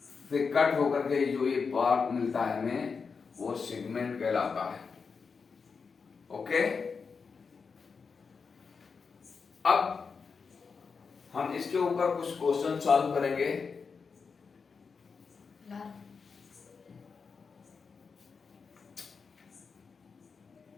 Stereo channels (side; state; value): right; quieter; 5.3 dB